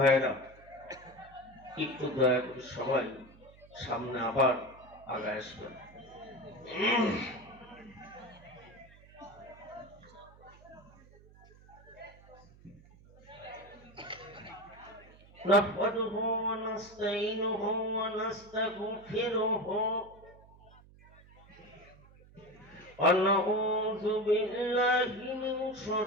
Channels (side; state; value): right; noise; hum, 24 dB below the sound